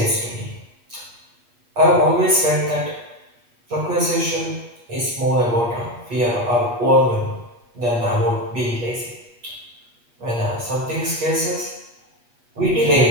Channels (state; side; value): late; left; 8.4 ms